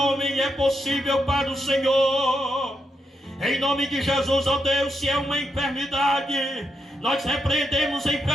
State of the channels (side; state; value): both; normal; correlation 0.83